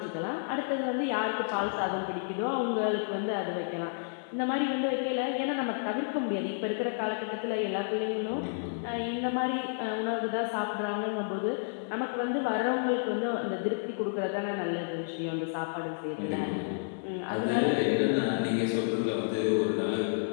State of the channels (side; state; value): right; silent; digital silence